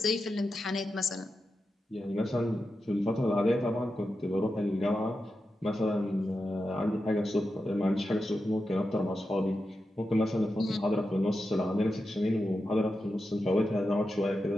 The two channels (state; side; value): normal; both; correlation 0.90